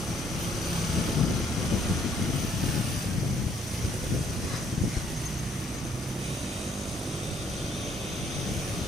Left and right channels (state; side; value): normal; both; correlation 0.67